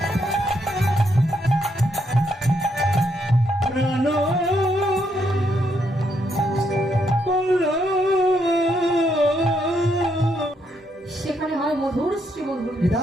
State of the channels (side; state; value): both; normal; correlation 0.76